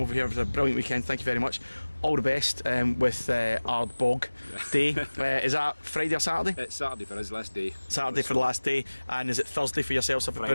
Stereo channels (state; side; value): inverted; both; correlation -1.00